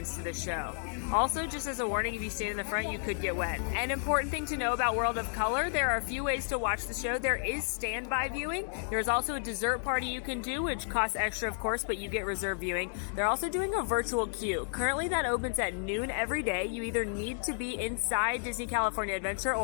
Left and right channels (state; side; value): silent; right; digital silence